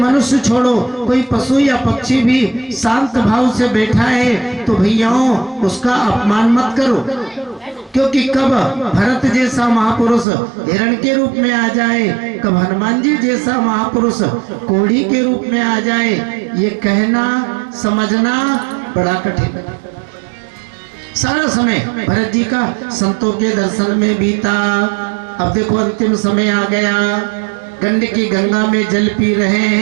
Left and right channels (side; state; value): left; drops out; at 10.2 s